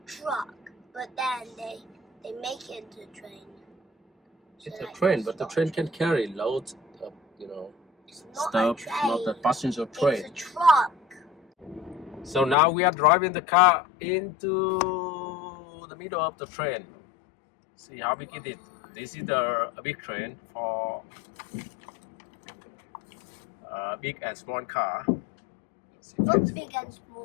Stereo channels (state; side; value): drops out; right; at 12.6 s